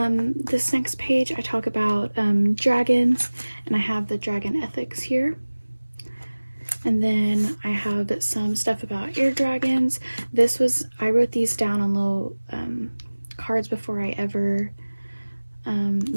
this next page I talk about dragons, and I have the dragon ethics here. And then I have some stuff about air dragons. I wrote these down on little cards before I ever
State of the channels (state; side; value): inverted; both; correlation -1.00